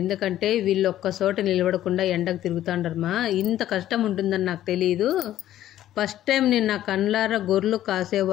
ఎందుకంటే వీళ్ళు ఒక్క చోట నిలబడకుండా ఎండకు తిరుగుతాండరమ్మా. ఇంత కష్టం ఉంటుందని నాకు తెలియదు. ఫస్ట్ టైం నేను నా కళ్ళారా గొర్రెలు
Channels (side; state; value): right; quieter; 12.8 dB